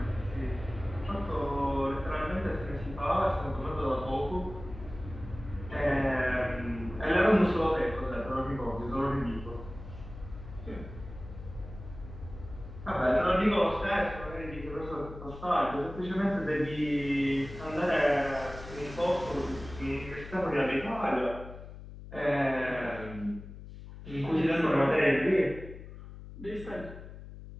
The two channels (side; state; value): left; noise; hum, 13 dB below the sound